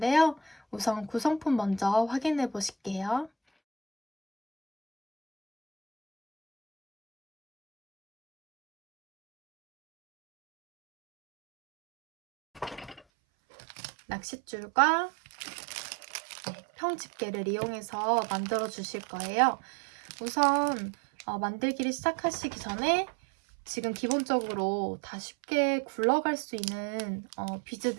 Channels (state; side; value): drops out; left; at 13.0 s